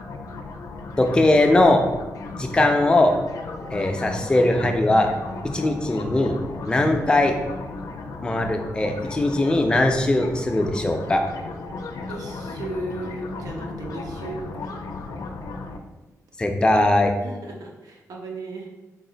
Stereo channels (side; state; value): both; normal; correlation 0.88